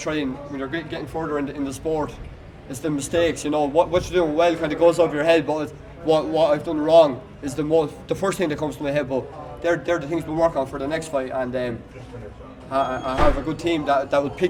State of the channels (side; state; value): both; identical; correlation 1.00